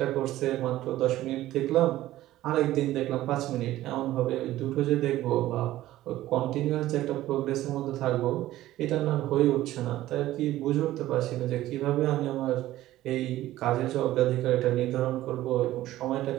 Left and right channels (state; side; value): quieter; left; 15.0 dB